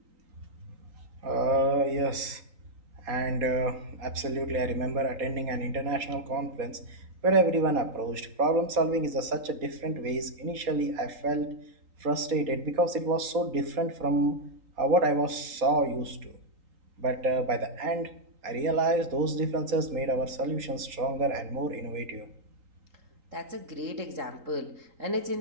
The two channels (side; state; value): left; late; 3.9 ms